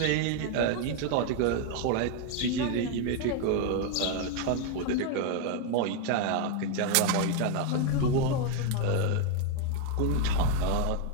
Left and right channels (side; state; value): both; different; correlation 0.01